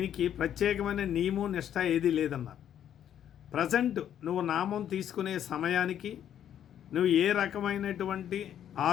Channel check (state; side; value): quieter; right; 10.1 dB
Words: ప్రత్యేకమైన నియమం నిష్ట ఏదీ లేదన్నారు. ప్రజెంట్ నువ్వు నామం తీసుకునే సమయానికి నువ్వు ఏ రకమైనటువంటి